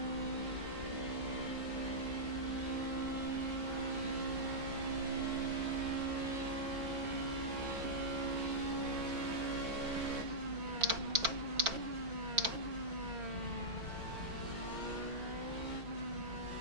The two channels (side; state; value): left; late; 4.5 ms